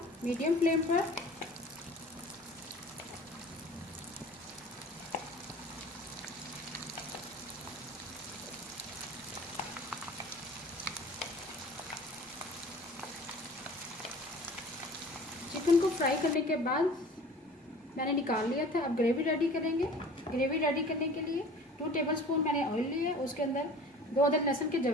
मीडियम फ्लेम पर। चिकन को फ्राई करने के बाद मैंने निकाल लिया था। अब ग्रेवी रेडी करेंगे। ग्रेवी रेडी करने के लिए 2 टेबलस्पून मैंने ऑयल लिया। उसके अंदर 2 अदद लहसुन के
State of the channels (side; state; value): both; normal; correlation 0.44